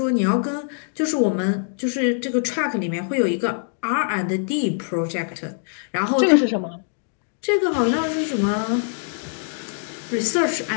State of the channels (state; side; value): silent; right; 62 dB below the other